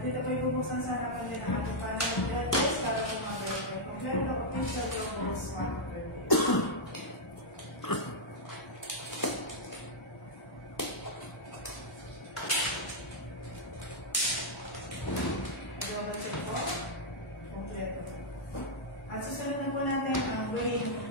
dito po ibubuksan sa harapan din ang ating panel of judges para po mag-verify. Kung meron na official rules, mag-verify. At susunod na po natin ang weighing of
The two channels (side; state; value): both; normal; correlation -0.05